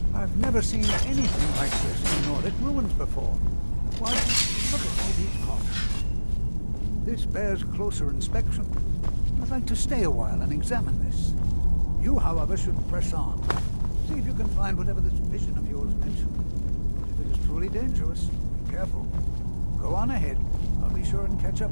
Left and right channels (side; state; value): both; inverted; correlation -1.00